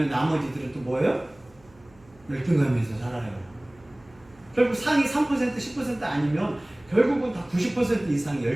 나머지들은 또 뭐예요? 열등감에서 살아요. 결국 상위 3%, 10% 아니면 결국은 다 90% 이상이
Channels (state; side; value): noise; right; hum, 28 dB below the sound